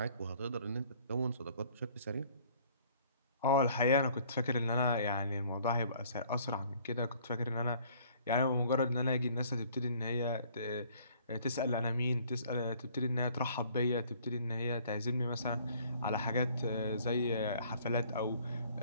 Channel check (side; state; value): both; inverted; correlation -0.57